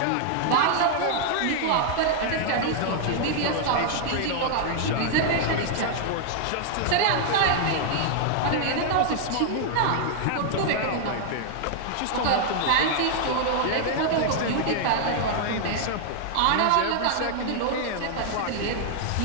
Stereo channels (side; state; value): both; different; correlation 0.00